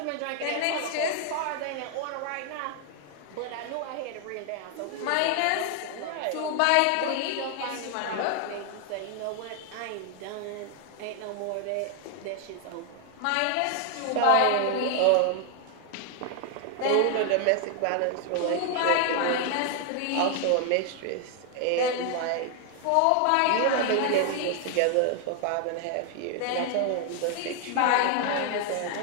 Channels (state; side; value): different; both; correlation 0.00